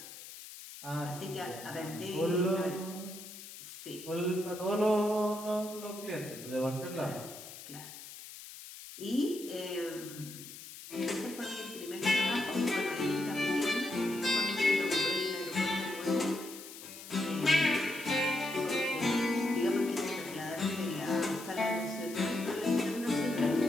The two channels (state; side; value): noise; left; hiss, 14 dB below the sound